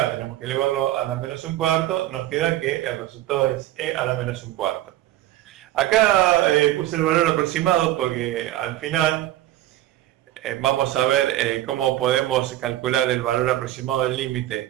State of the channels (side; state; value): left; quieter; 14.6 dB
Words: tenemos que elevarlo a la menos un cuarto, nos queda que el resultado es e a la menos un cuarto. Acá puse el valor aproximado porque al final vamos a ver cómo podemos calcular el valor aproximado del